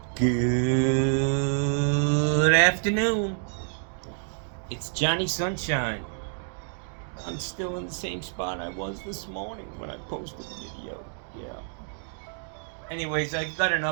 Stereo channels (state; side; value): silent; left; 59 dB below the other